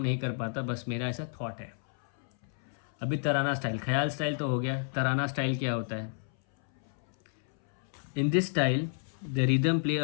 नहीं कर पाता, बस मेरा ऐसा थॉट है। अभी तराना स्टाइल, ख्याल स्टाइल तो हो गया, तराना स्टाइल क्या होता है? In this style the rhythm play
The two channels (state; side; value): silent; right; 58 dB below the other